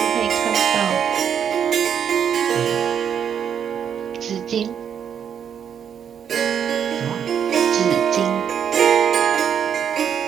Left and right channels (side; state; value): left; quieter; 8.2 dB